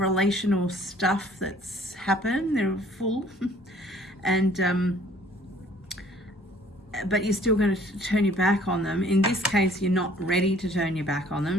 stuff that's happened, they're full. And but you're still going to turn your back on them. In this case, you're not ready to turn your back on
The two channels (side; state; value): both; normal; correlation 0.56